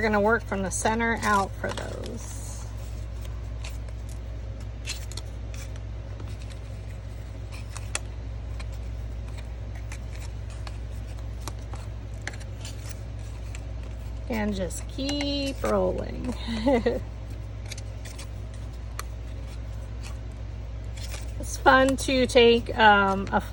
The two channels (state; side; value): identical; both; correlation 1.00